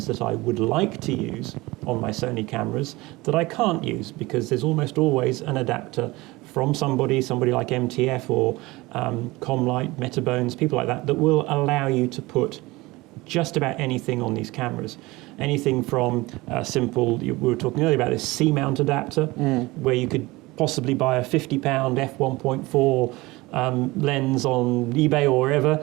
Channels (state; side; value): quieter; left; 21.2 dB